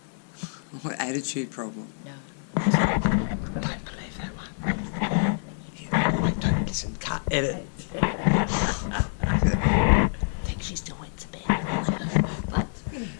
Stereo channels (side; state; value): right; silent; digital silence